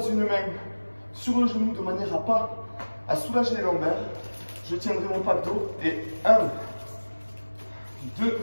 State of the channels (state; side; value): inverted; both; correlation -1.00